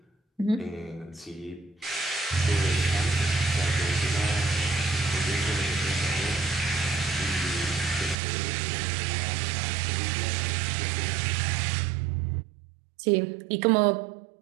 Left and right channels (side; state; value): left; drops out; at 8.2 s